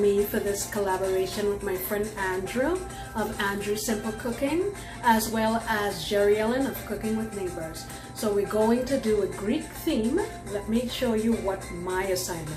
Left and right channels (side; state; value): both; identical; correlation 1.00